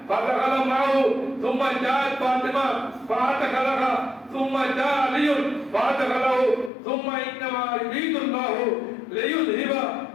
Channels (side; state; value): right; drops out; at 6.7 s